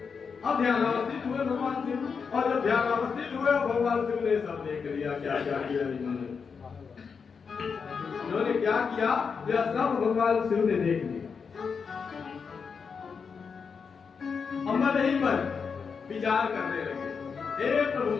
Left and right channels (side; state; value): right; quieter; 5.8 dB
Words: अब ध्यान अवस्थित हुए भगवान शिव, और जब ध्यान अवस्थित हुए भगवान शिव ने सब देख लिया क्या क्या किया इन्होंने क्या किया, यह सब भगवान शिव ने देख लिया। हम नहीं पर विचार करने लगे, हे प्रभु